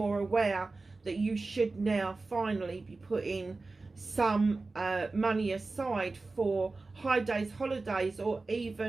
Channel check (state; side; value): quieter; left; 3.6 dB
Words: aware that you should now finally be putting some money aside for high days, holidays, or